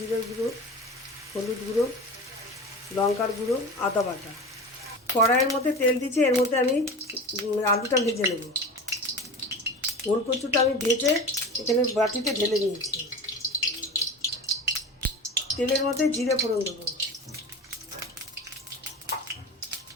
গুঁড়ো, হলুদ গুঁড়ো, লঙ্কার গুঁড়ো, আদা বাটা। কড়াইয়ের মধ্যে তেল দিচ্ছি, এর মধ্যে আমি আলুটা ভেজে নেব। ওল কচুটা আমি ভেজে এখানে বাটিতে ঢেলে নিয়েছি। তেলের মধ্যে জিরে ফোড়ন দেবো,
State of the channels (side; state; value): both; normal; correlation 0.31